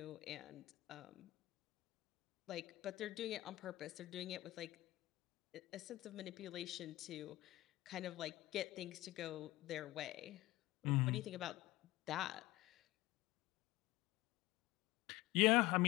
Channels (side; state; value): right; quieter; 18.1 dB